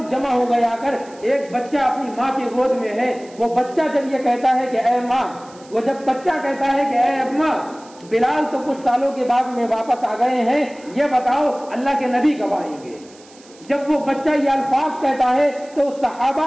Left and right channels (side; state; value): right; noise; hiss, 25 dB below the sound